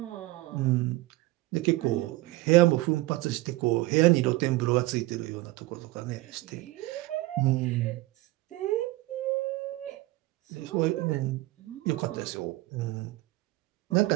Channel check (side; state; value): left; quieter; 19.3 dB